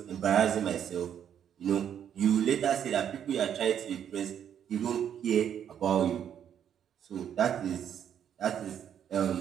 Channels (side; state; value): left; quieter; 9.2 dB